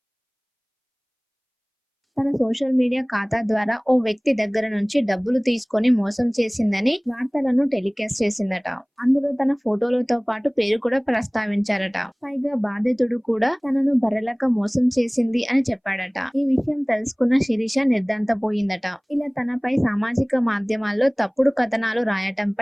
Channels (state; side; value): identical; both; correlation 1.00